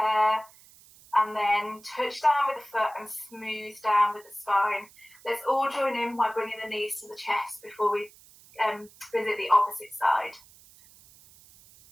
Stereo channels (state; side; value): noise; right; hiss, 24 dB below the sound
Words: And then touch down with the foot and smooth down with the spine. Let's all join in by bringing the knees to the chest before we visit the opposite side.